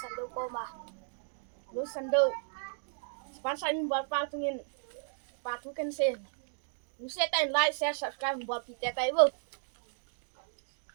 Sando ko ma. Ghost Sando sponsor in buat patungin patukan sen. Mesti tak like share subscribe buat kita tak ibu.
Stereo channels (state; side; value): silent; left; digital silence